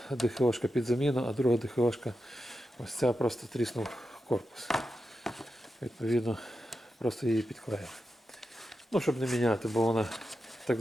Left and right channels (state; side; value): normal; both; correlation 0.89